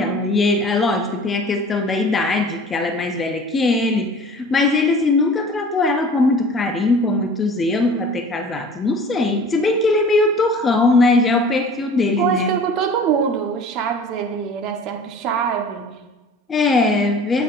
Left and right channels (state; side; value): normal; both; correlation 0.44